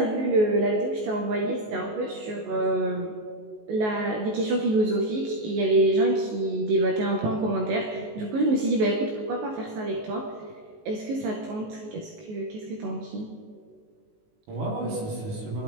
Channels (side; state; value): left; late; 19 ms